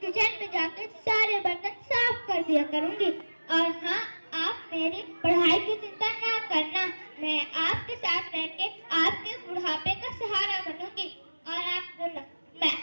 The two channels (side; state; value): both; inverted; correlation -1.00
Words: किचन में जाकर सारे बर्तन साफ कर दिया करूँगी। और हाँ, आप मेरी पढ़ाई की चिंता ना करना, मैं आपके साथ रह के आपके बुढ़ापे का सहारा बनूंगी। और आप मैं